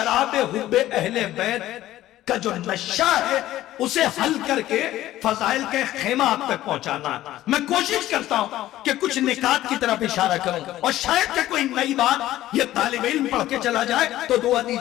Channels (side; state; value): right; quieter; 14.4 dB